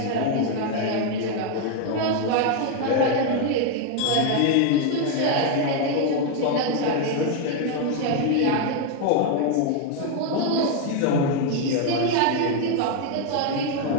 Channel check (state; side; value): different; both; correlation 0.01